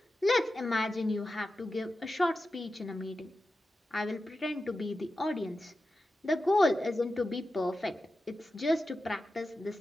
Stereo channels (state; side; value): normal; both; correlation 0.92